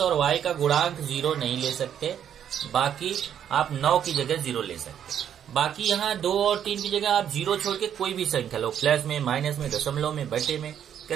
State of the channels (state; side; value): quieter; left; 9.4 dB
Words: और y का गुणांक 0 नहीं ले सकते, बाकी आप 9 की जगह 0 ले सकते। बाकी यहाँ 2 और 3 की जगह आप 0 छोड़ के कोई भी संख्या लो, प्लस में, माइनस में, दशमलव में, बटे में,